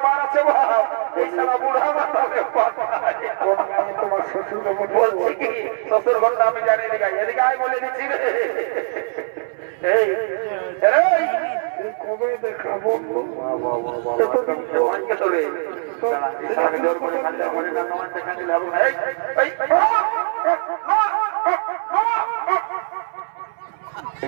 পার আছে ভাব, এই সারা বুড়া মাতালে তোমার শ্বশুর বলছি কি শ্বশুর ঘরটা আমি জানি এদিকে আয় বলে দিচ্ছি রে। এই কবে দেখাবো জোর করে দেখা দিলে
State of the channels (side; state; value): left; silent; 62 dB below the other